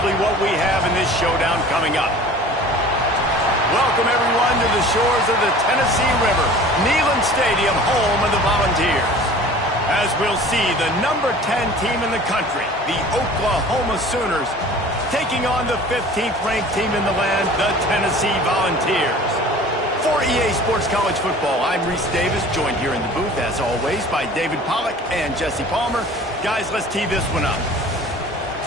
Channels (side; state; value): both; normal; correlation 0.44